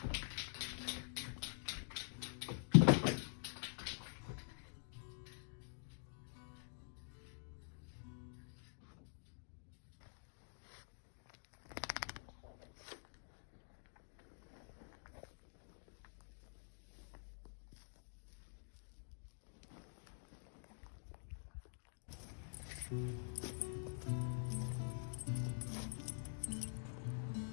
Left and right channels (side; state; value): right; silent; digital silence